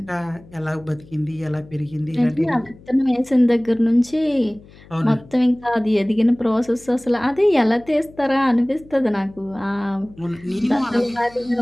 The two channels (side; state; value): left; noise; hum, 23 dB below the sound